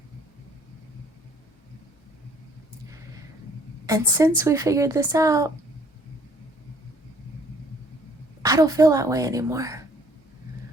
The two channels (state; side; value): normal; both; correlation 0.59